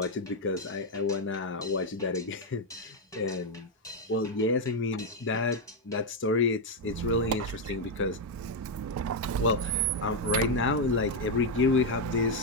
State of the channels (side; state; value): both; normal; correlation 0.03